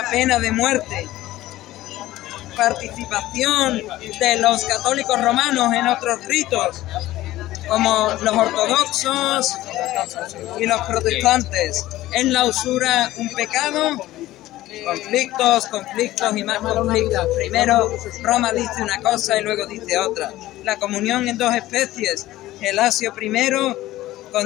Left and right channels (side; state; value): right; quieter; 15.9 dB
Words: pena de muerte. Participación de los católicos romanos en otros ritos, como los ortodoxos y los protestantes. ¿Es la usura un pecado? Conflictos y más conflictos. Primero Roma dice una cosa y luego dice otra. La comunión en dos especies. Gelasio I